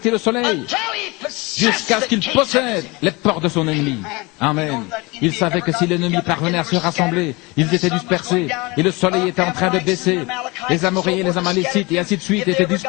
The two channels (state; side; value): quieter; right; 25.1 dB